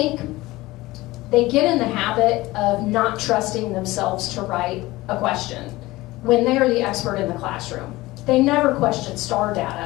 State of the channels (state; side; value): quieter; right; 19.2 dB